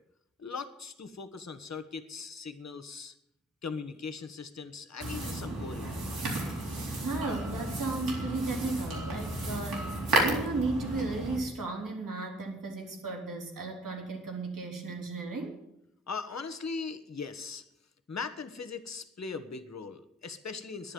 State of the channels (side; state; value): both; normal; correlation 0.53